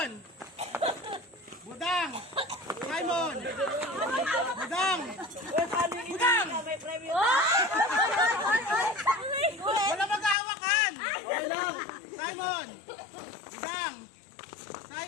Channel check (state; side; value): drops out; right; at 10.4 s